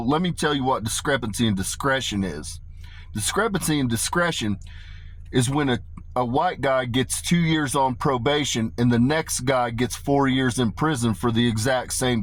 me tell you what discrepancy and discretion is. Discrepancy and discretion is when a white guy gets 2 years on probation and the next guy gets 4 years in prison for the exact same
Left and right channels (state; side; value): identical; both; correlation 1.00